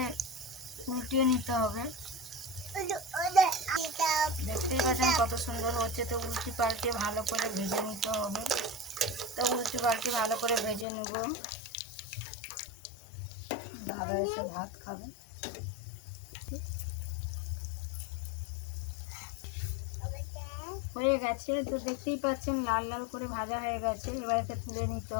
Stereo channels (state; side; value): drops out; right; at 10.9 s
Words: উল্টিয়ে নিতে হবে। দেখতেই পাচ্ছেন কত সুন্দর হচ্ছে। তো উল্টি পাল্টে ভালো করে ভেজে নিতে হবে। তো উল্টি পাল্টে ভালো করে ভেজে নেব। দাদা এসে ভাত খাবে। হয়ে গেছে। তো দেখতেই পাচ্ছেন লাল লাল করে ভাজা হয়ে গেছে। এবার একে তুলে নিতে